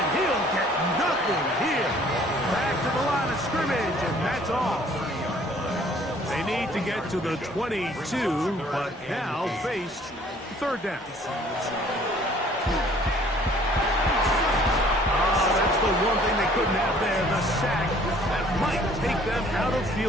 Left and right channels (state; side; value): normal; both; correlation 0.56